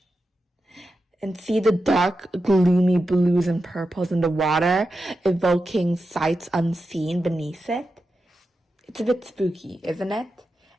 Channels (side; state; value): both; normal; correlation 0.90